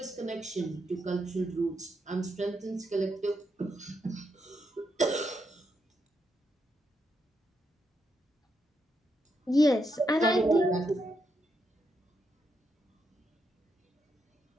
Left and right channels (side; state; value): both; normal; correlation 0.81